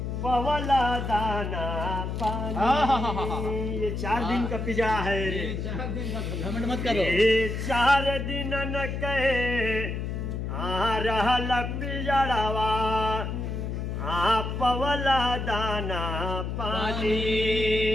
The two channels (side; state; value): left; noise; hum, 3 dB below the sound